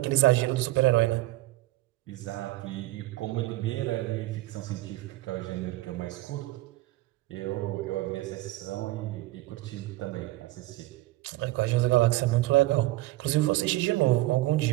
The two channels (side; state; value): left; quieter; 18.3 dB